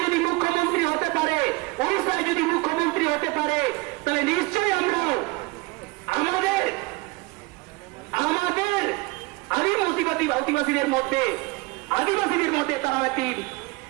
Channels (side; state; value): left; quieter; 25.0 dB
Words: যদি মুখ্যমন্ত্রী হতে পারে ওড়িশায় যদি মুখ্যমন্ত্রী হতে পারে তাহলে নিশ্চয়ই আমরা আমাদের আদিবাসীদের মধ্যে তারা একটি